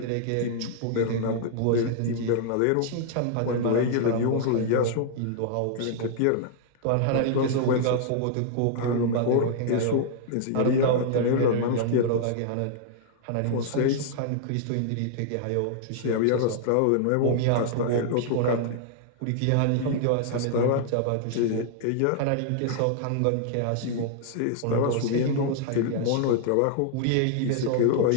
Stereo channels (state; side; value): different; both; correlation -0.01